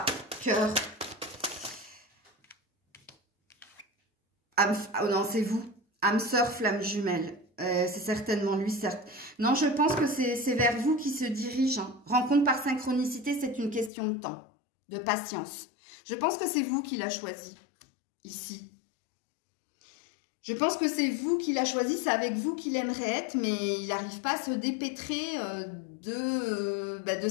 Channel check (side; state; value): right; drops out; at 13.9 s